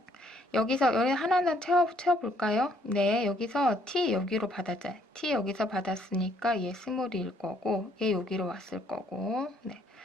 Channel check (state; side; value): normal; both; correlation 0.67